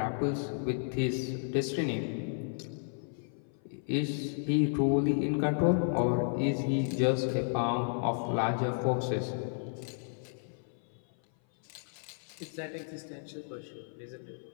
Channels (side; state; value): right; silent; 56 dB below the other